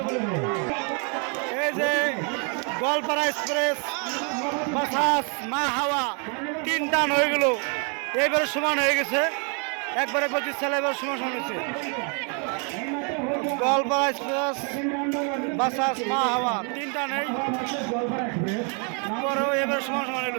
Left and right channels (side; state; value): left; quieter; 38.3 dB